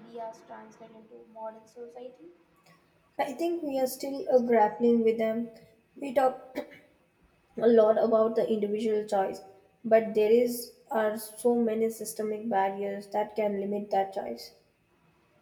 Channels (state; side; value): identical; both; correlation 1.00